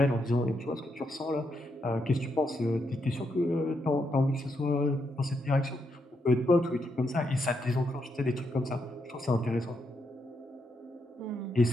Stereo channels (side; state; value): both; normal; correlation 0.80